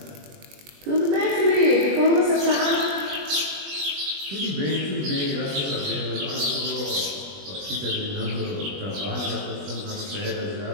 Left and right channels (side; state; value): left; late; 21 ms